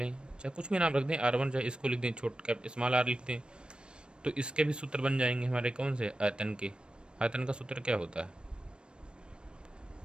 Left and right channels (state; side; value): late; left; 0.055 ms